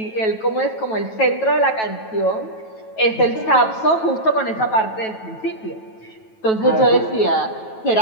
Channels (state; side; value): late; right; 9.2 ms